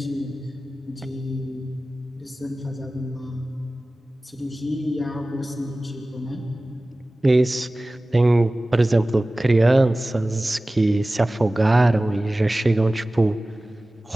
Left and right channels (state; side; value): normal; both; correlation 0.97